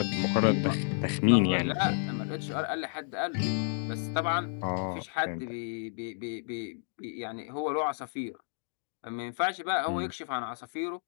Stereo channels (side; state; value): right; silent; digital silence